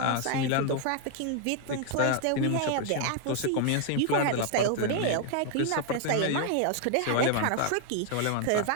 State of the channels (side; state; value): both; different; correlation 0.00